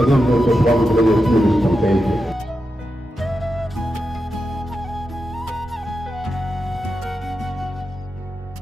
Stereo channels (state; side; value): normal; both; correlation 0.88